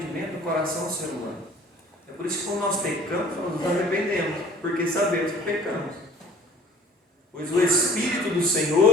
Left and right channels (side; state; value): both; normal; correlation 0.52